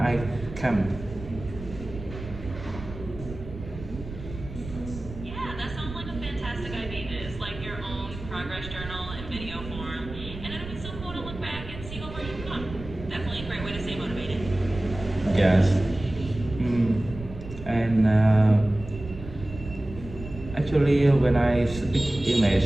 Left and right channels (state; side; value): noise; right; rumble, 12 dB below the sound